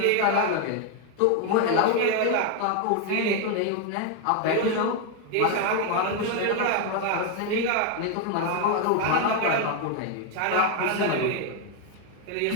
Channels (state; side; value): different; both; correlation 0.01